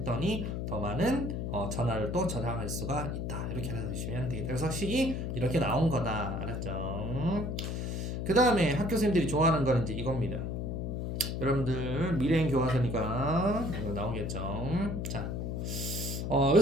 더 많은 전하를 또 저장할 수가 있다. 이렇게 알아두시면 되겠다. 그래서 식이 이렇게 나온 거다. 알았죠? 그 다음에 학교 선생님들이 좋아하는 거는 이제 이겁니다. 여러분들 미래행 교과서니까 이거 나오겠죠. 자,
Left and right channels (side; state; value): left; noise; hum, 3 dB below the sound